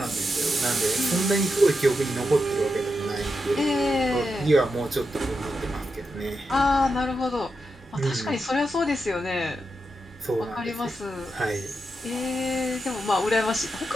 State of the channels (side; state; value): both; normal; correlation 0.87